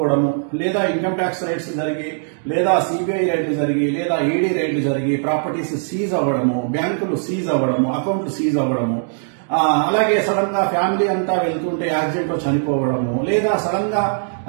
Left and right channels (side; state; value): left; silent; digital silence